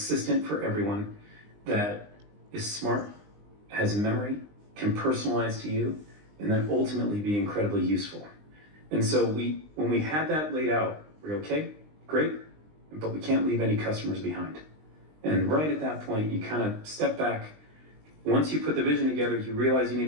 for everyone that is smart, has memory, can personalize to you, and then ultimately be incredibly useful. And so when we had that laid out, we're okay, great, but we can't leave any customers behind. And right at that point, you kind of step back. Once you put the vision together, you realize you need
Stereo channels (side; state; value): left; late; 20 ms